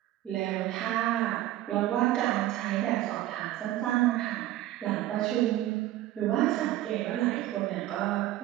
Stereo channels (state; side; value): quieter; left; 14.5 dB